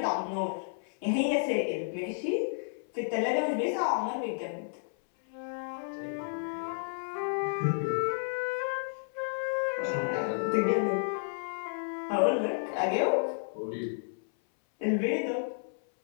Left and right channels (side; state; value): right; silent; 57 dB below the other